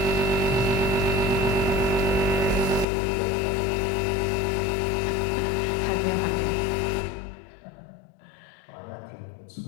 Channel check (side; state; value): right; drops out; at 2.9 s